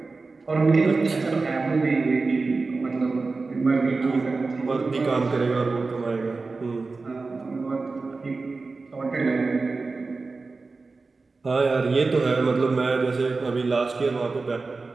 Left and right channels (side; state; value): left; quieter; 3.9 dB